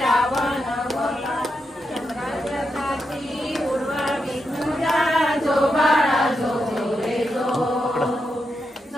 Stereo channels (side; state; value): both; normal; correlation 0.85